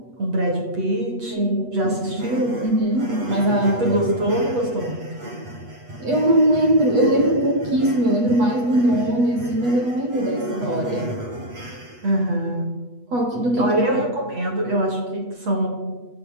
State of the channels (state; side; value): late; left; 8.2 ms